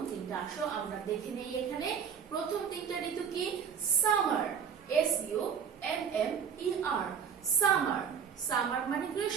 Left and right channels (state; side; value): quieter; left; 7.3 dB